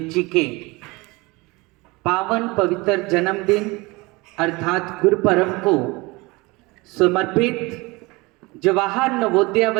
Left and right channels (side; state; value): left; quieter; 24.1 dB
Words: जी के पावन पवित्र जन्मदिन अर्थात गुरुपर्व को समर्पित जवाहर नवोदय